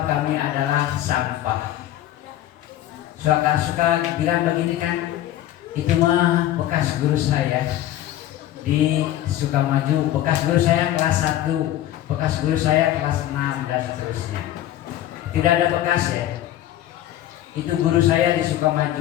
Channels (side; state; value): right; quieter; 13.1 dB